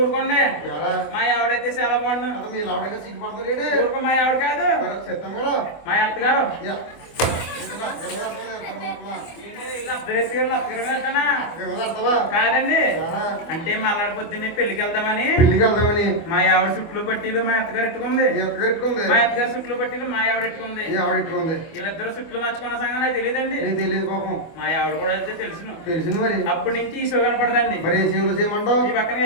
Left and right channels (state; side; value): late; right; 24 ms